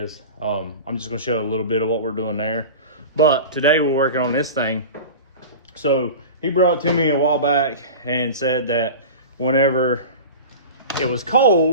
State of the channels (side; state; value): both; inverted; correlation -0.32